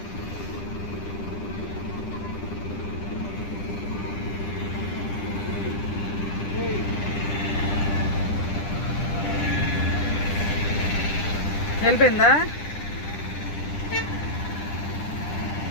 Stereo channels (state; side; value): late; right; 10 ms